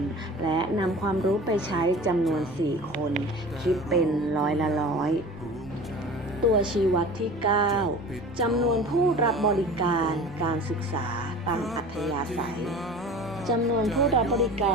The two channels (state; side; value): normal; both; correlation 0.39